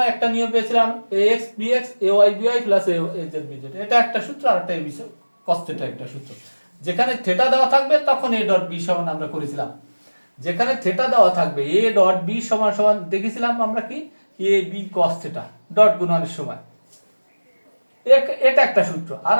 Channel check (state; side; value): inverted; both; correlation -1.00